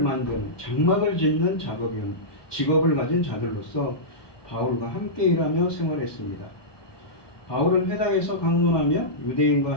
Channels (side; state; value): right; late; 1.2 ms